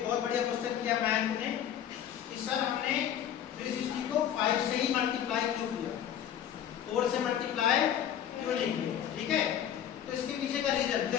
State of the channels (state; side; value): quieter; right; 9.9 dB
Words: बहुत बढ़िया क्वेश्चन किया मैथ ने कि सर हमने 360 को 5 से ही मल्टीप्लाई क्यों किया, 4 से मल्टीप्लाई क्यों नहीं किया, ठीक है। तो इसके पीछे का रीजन